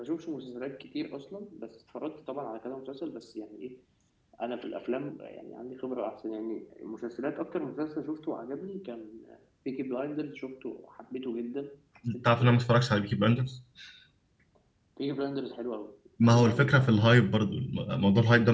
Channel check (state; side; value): identical; both; correlation 1.00